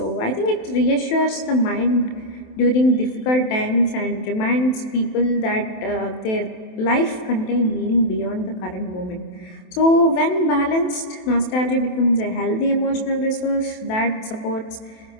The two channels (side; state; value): right; late; 27 ms